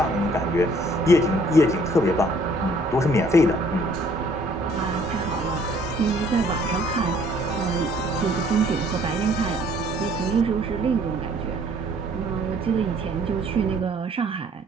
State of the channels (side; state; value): both; normal; correlation 0.60